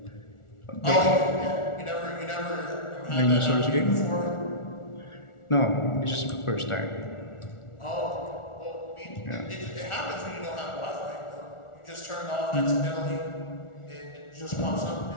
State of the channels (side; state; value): right; late; 1.4 ms